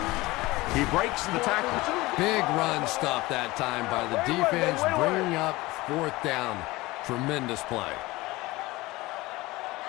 He breaks the tackle. Big run stop that time by the defense, bringing up 4th down. Tremendous play.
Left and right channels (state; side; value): quieter; right; 20.4 dB